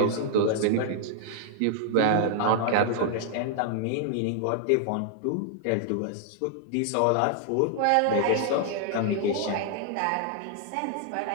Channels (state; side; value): different; both; correlation 0.00